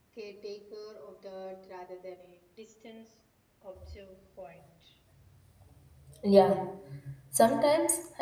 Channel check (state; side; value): identical; both; correlation 1.00